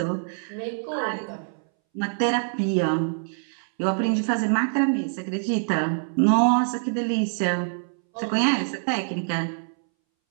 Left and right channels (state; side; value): silent; left; 62 dB below the other